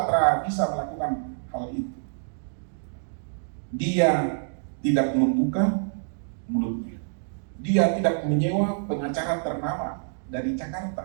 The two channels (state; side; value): silent; left; digital silence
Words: tidak bisa melakukan hal itu. Dia tidak membuka mulutnya. Dia tidak menyewa pengacara ternama dari